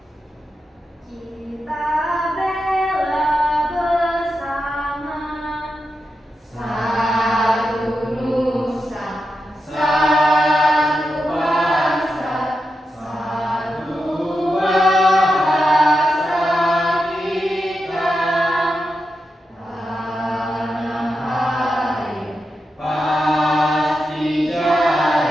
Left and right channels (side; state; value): both; normal; correlation 0.88